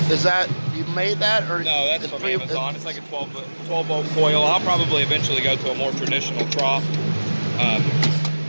Is that, you made that, or No, that's it's from pretty- Amazon. It's like a 12 volt coil. I'll probably eventually go to a more traditional trough.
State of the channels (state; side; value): inverted; both; correlation -1.00